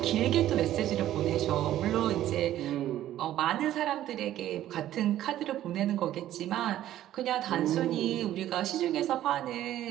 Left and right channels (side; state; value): left; quieter; 12.9 dB